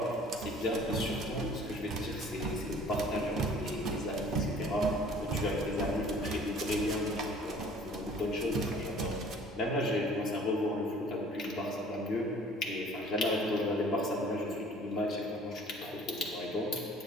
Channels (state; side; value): normal; both; correlation 0.51